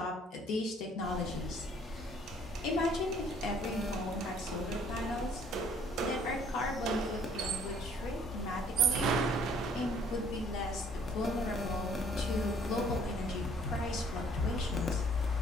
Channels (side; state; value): both; normal; correlation 0.59